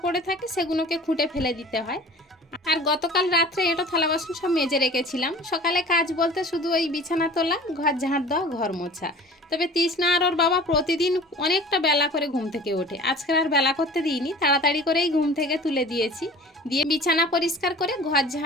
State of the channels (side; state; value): both; normal; correlation 0.43